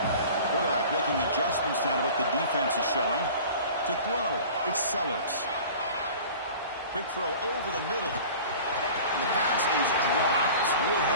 Quarterback making adjustments now to what the defense is showing. To throw, it's Sellers. Quick throw over the middle. And the pass is dropped. Would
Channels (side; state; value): both; inverted; correlation -0.42